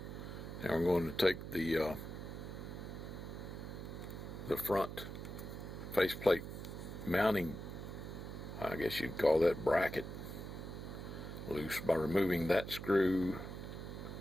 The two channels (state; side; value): noise; right; hum, 8 dB below the sound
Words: now we're going to take the front faceplate mounting, I guess you'd call that bracket, loose by removing that screw